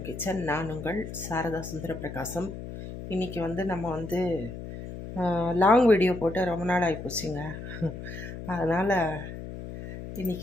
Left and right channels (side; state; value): left; noise; hum, 10 dB below the sound